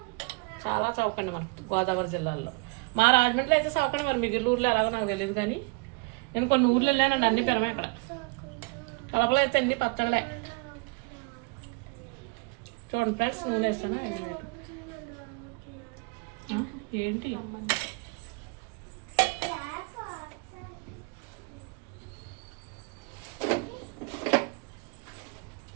చాలా చవకండి మనకు గోదావరి జిల్లాలో. మా రాజమండ్రిలో అయితే చవకండి, మరి మిగిలిన ఊర్లో ఎలాగో నాకు తెలియదు. కానీ నేను కొన్ని ఊర్లు వెళ్ళానండి, అన్ని పెరమే. అక్కడ కడపలో అయితే అన్ని పచ్చళ్ళే. చూడండి ఫ్రెండ్స్, నూనె వేస్తాను. ఏంటి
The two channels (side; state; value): left; quieter; 28.6 dB